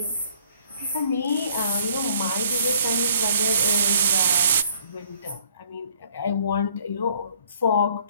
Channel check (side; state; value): both; inverted; correlation -0.59